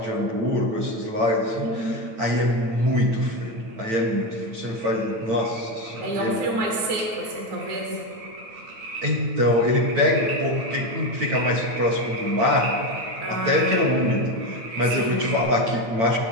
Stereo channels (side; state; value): left; late; 8.9 ms